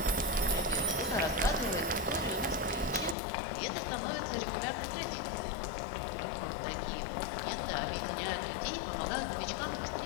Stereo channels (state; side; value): drops out; right; at 3.2 s